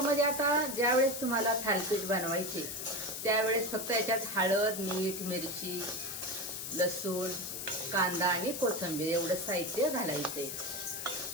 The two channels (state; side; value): noise; left; hiss, 6 dB below the sound